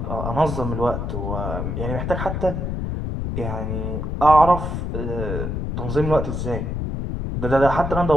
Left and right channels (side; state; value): left; noise; rumble, 3 dB below the sound